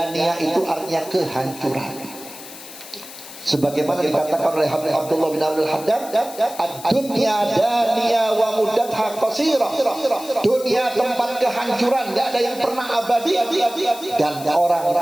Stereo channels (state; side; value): noise; left; hiss, 15 dB below the sound